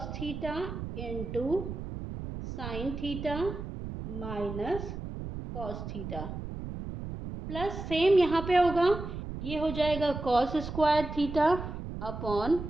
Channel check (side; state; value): right; noise; rumble, 7 dB below the sound